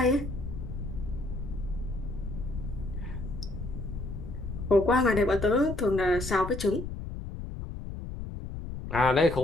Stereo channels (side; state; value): left; noise; rumble, 7 dB below the sound